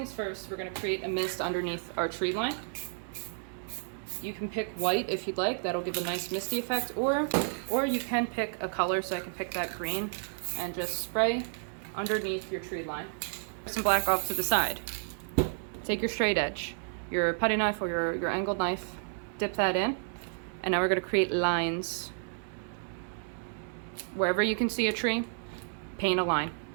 first, we're gonna create a mist underneath our tree line. You can pick white if you'd like, that'll give a nice misty effect, or you can pick a color, so I can pick that green and just spray underneath your tree line. Some black off to the side. Take your straight edge, your putty knife or your angled knife, dip that in, and now we're gonna create lines. Wherever you can see a tree, paint a line.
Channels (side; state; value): left; silent; digital silence